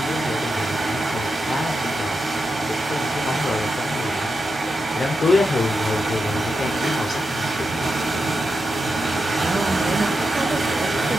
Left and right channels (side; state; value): both; normal; correlation 0.87